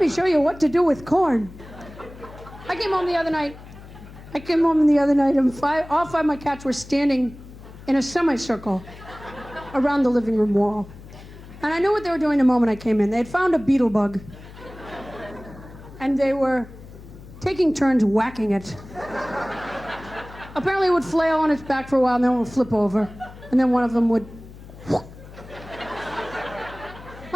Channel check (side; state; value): left; noise; hum, 17 dB below the sound